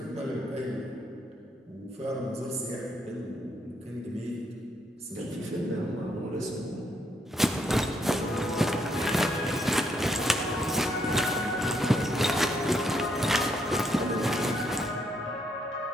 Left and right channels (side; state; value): both; normal; correlation 0.74